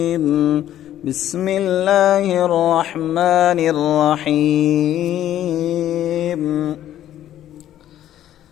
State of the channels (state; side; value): quieter; right; 12.0 dB